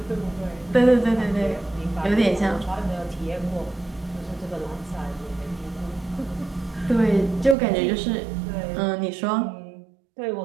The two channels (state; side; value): drops out; left; at 7.6 s